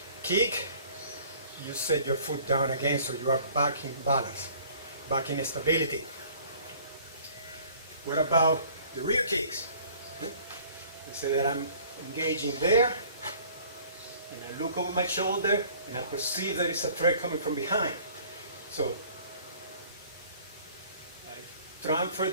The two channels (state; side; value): inverted; both; correlation -0.52